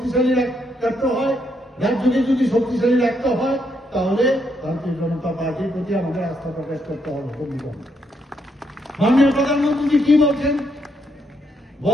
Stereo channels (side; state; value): both; normal; correlation 0.77